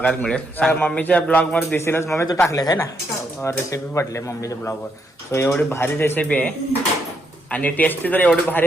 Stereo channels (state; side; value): normal; both; correlation 0.77